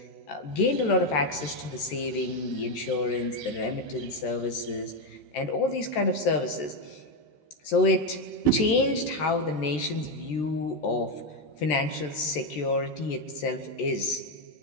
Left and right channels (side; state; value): right; late; 13 ms